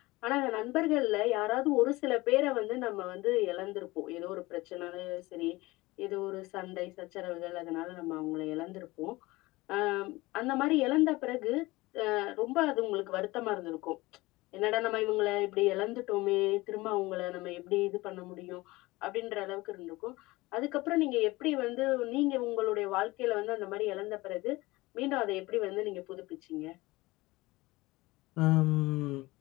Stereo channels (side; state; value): right; quieter; 20.8 dB